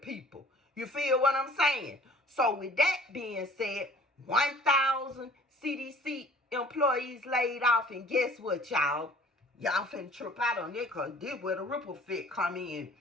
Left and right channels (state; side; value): normal; both; correlation 0.51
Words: You feel what I'm saying? So with that being said, 1,000 CDC employees laid off, and guess what, y'all? Y'all finna trip out on it, because this where the ripple effect come in.